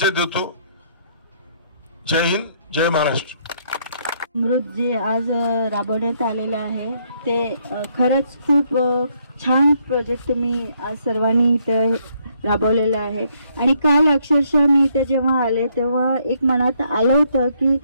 देतो। जय हिंद, जय महाराष्ट्र। अमृत जे आज राबवण्यात आलेलं आहे ते खरंच खूप छान प्रोजेक्ट तुम्ही आज सर्वांनी इथे राबवलेलं आहे। आणि काल अक्षरशः मी इथे जेव्हा आले तेव्हा एक मनात आलं होतं की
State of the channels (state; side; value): inverted; both; correlation -0.71